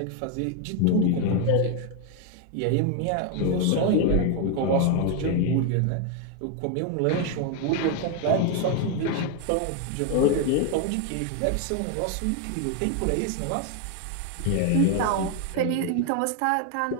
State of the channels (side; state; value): both; different; correlation 0.01